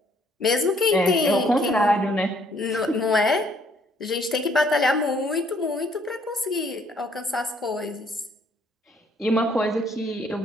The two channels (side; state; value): both; normal; correlation 0.64